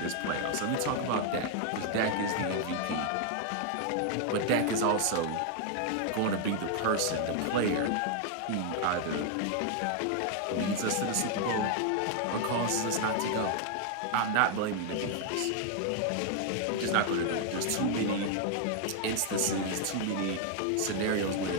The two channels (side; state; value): both; different; correlation 0.00